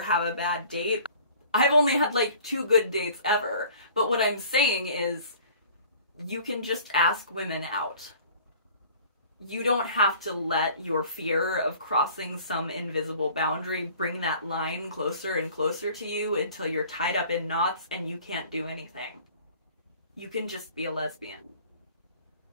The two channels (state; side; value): inverted; both; correlation -0.49